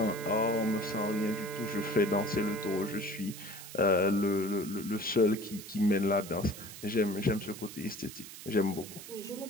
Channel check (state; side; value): noise; right; hiss, 13 dB below the sound